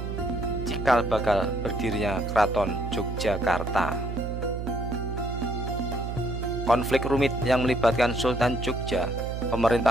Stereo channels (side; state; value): right; noise; hum, 5 dB below the sound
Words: cikal bakal berdirinya Keraton Yogyakarta. Konflik rumit yang melibatkan Sultan Jogja,